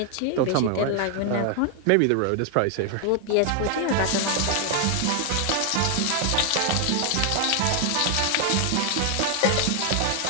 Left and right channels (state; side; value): different; both; correlation 0.00